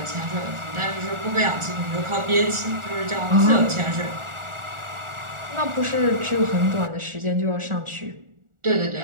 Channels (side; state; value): left; late; 1.4 ms